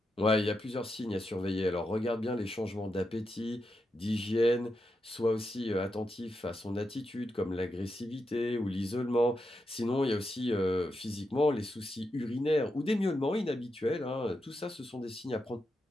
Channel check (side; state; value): both; normal; correlation 0.86